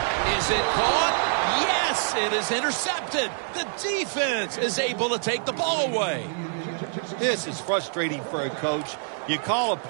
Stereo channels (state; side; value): silent; left; 61 dB below the other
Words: Is it caught? Yes, it is intercepted. The defense is able to take the ball away. This is frustrating for a coach. You call a